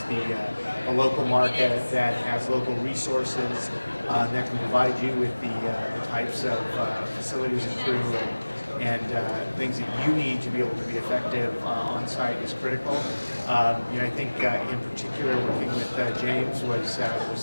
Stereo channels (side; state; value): both; inverted; correlation -1.00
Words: the local market, that has local resources, that can provide you with the types of facilities and crew and things that you need to be able to be effective on site is critical. I think in particular working with James